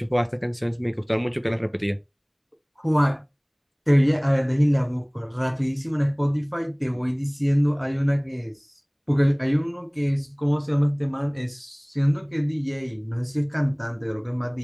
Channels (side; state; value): both; identical; correlation 1.00